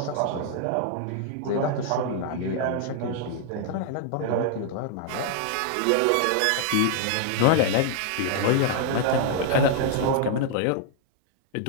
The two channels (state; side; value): different; both; correlation 0.00